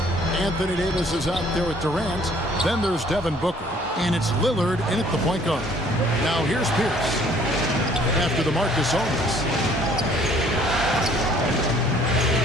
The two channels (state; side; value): normal; both; correlation 0.58